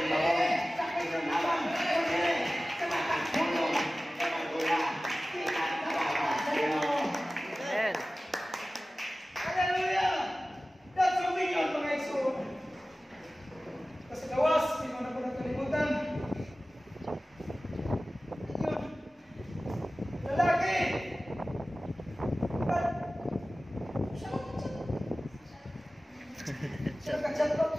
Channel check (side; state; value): both; normal; correlation 0.96